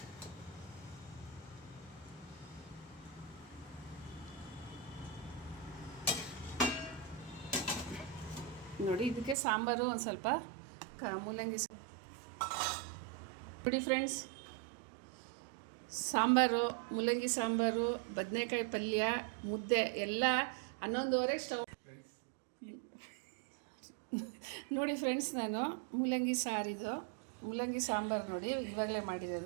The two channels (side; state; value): left; drops out; at 9.3 s